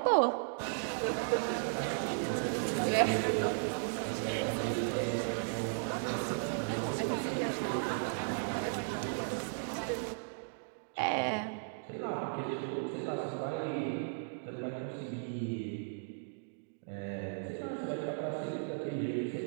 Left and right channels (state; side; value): silent; left; digital silence